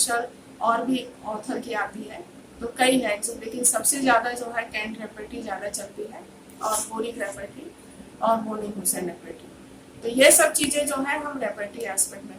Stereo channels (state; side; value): identical; both; correlation 1.00